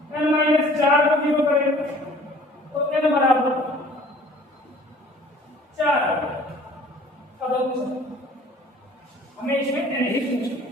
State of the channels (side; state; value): both; normal; correlation 0.51